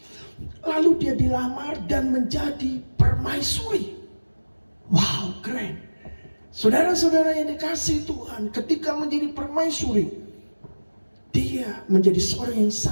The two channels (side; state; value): both; inverted; correlation -1.00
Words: Lalu dia dilamar dan menjadi permaisuri. Wow, keren. Saudara-saudara yang dikasihi Tuhan, ketika menjadi permaisuri, dia menjadi seorang yang